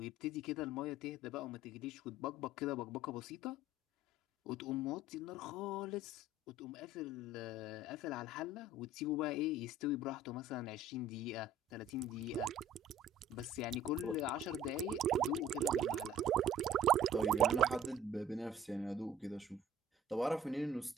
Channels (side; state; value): both; normal; correlation 0.49